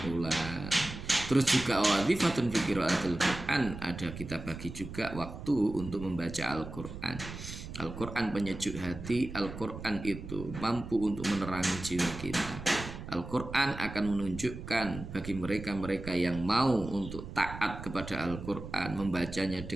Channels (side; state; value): right; noise; rumble, 10 dB below the sound